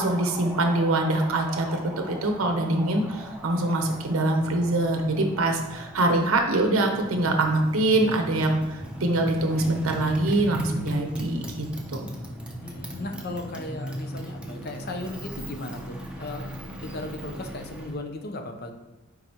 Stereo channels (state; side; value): normal; both; correlation 0.47